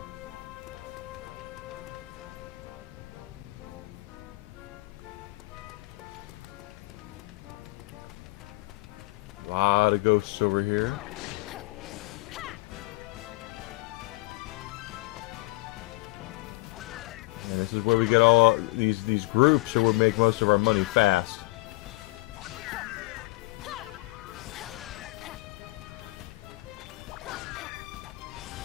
ghosts over here. And this is where we get all these groups, so we make most of our money fast.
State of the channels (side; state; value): right; quieter; 22.1 dB